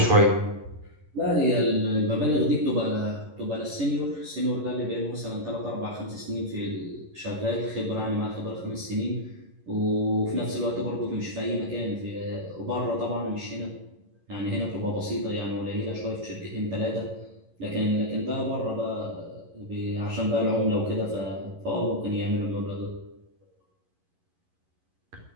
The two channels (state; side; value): late; left; 11 ms